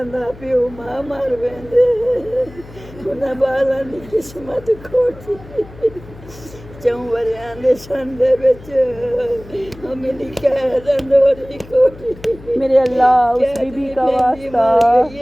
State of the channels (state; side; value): noise; left; hum, 19 dB below the sound